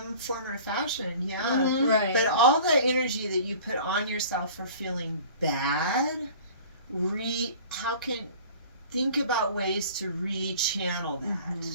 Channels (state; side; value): inverted; both; correlation -0.44